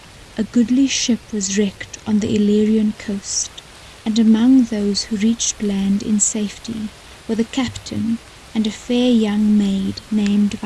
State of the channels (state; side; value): identical; both; correlation 1.00